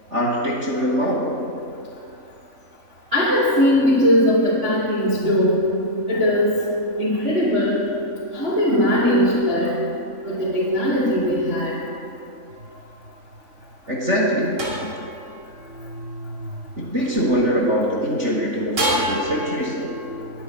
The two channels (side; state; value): left; late; 3.5 ms